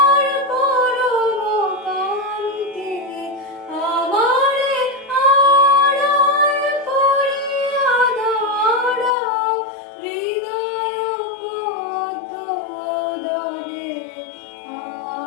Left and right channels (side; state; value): right; drops out; at 9.2 s